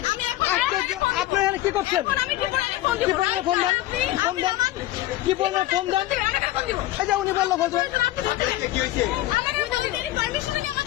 আমি এখন আশ্চর্য। আপনি এখানে কি করছেন? এখন আমি কি বলে ফোন কি দিব? বললেন ফোন দেন? ফোন দেন। কি বললেন ফোন দেন? ফোন দিব। এই যে উনি বললো ফোন দেন। আপনি বলতে কি হইছে? আমার আমাদের পারমিশন নিয়ে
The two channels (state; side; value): quieter; right; 15.9 dB